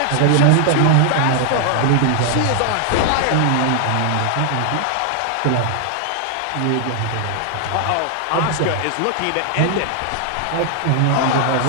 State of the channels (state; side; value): different; both; correlation 0.00